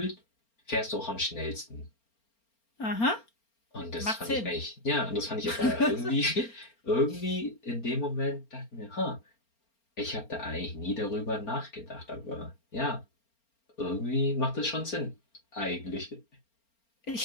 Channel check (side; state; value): right; late; 4.4 ms